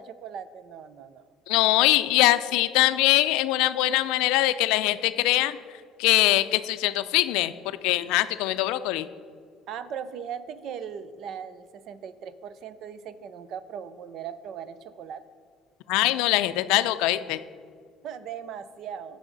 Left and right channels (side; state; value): right; quieter; 13.4 dB